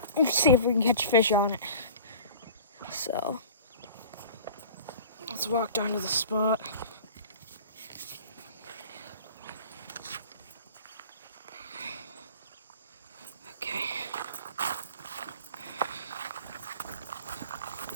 let's see if we can catch fish on it. So, let's walk down to the spot. Okay.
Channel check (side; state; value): both; inverted; correlation -0.39